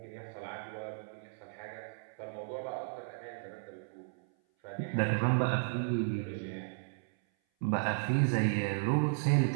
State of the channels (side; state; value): left; silent; 55 dB below the other